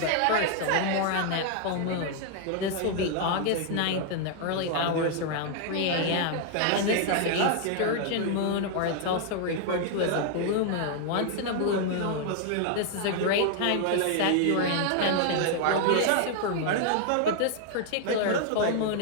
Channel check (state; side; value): different; both; correlation 0.00